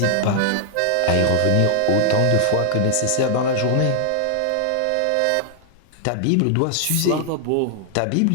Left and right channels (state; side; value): different; both; correlation 0.00